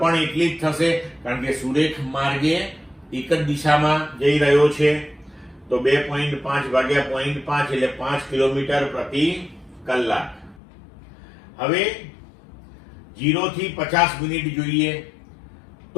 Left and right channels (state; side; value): drops out; right; at 10.6 s